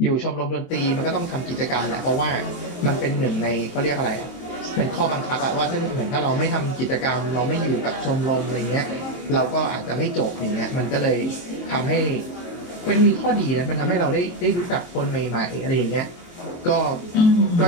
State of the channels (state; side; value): late; right; 23 ms